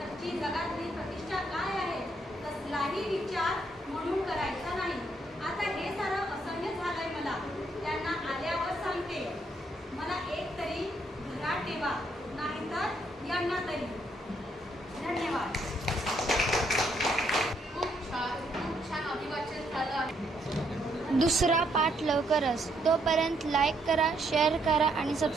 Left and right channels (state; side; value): normal; both; correlation 0.73